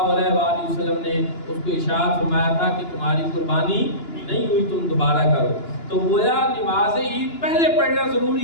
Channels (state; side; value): late; right; 2.9 ms